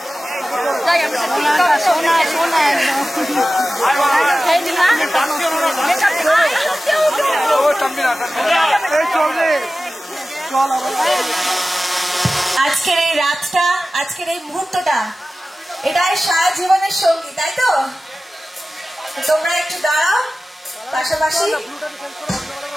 আজকের এই রাতটা, আজকের এই মুহূর্তটা, এটাই সারা জীবনের সঙ্গী, তাই তো? তোমরা একটু দাঁড়াও পাশাপাশি।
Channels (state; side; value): normal; both; correlation 0.96